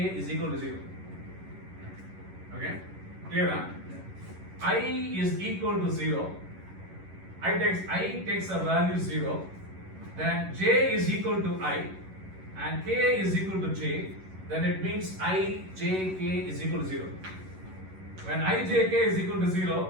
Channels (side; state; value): left; late; 11 ms